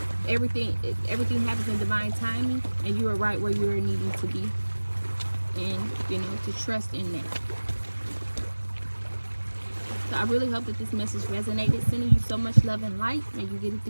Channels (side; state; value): both; inverted; correlation -1.00